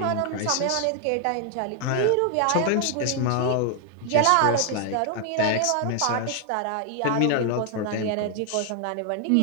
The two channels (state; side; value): different; both; correlation 0.00